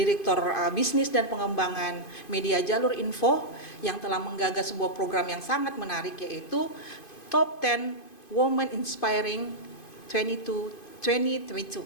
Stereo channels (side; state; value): right; late; 2.5 ms